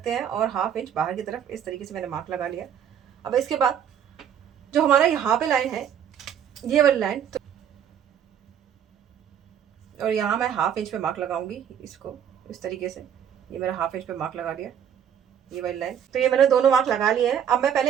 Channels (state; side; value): quieter; left; 8.9 dB